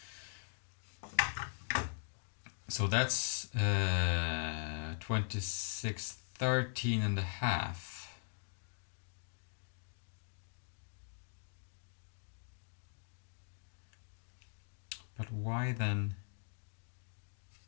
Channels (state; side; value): silent; right; digital silence